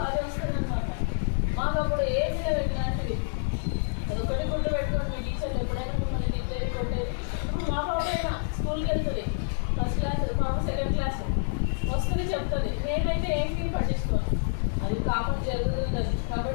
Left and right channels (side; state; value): right; silent; digital silence